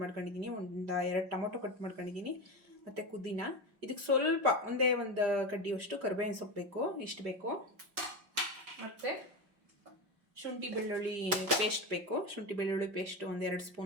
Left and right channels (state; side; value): late; left; 5.0 ms